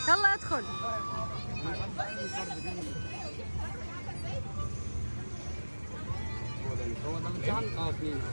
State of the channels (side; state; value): both; inverted; correlation -1.00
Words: يلا ادخل. هو ده الامتحان؟ 2